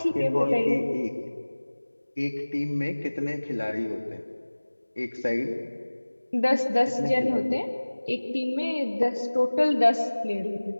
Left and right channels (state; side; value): inverted; both; correlation -1.00